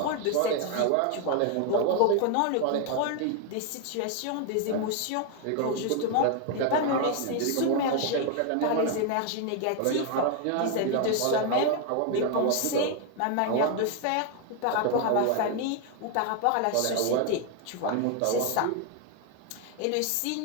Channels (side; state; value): both; different; correlation 0.01